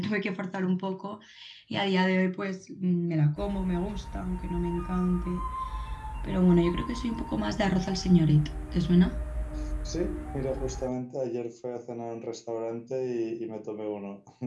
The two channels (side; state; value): both; identical; correlation 1.00